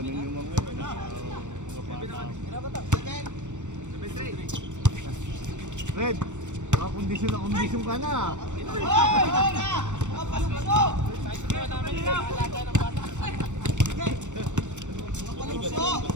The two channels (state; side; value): late; left; 0.85 ms